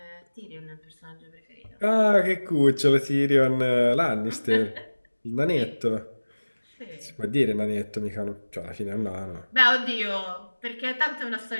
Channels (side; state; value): both; inverted; correlation -1.00